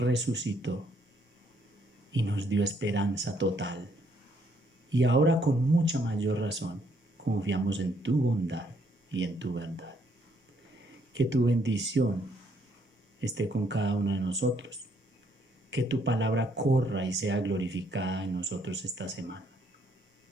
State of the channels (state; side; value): normal; both; correlation 0.69